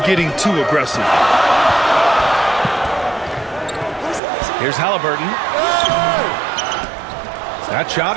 too aggressive. Here's Halliburton. That shot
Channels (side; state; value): left; drops out; at 4.2 s